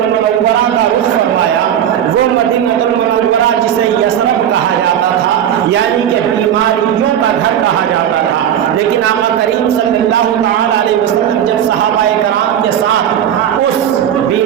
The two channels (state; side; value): quieter; left; 10.0 dB